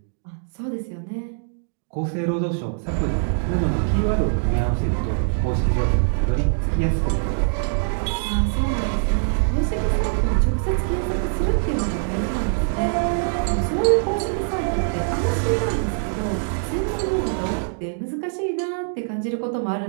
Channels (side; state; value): left; silent; digital silence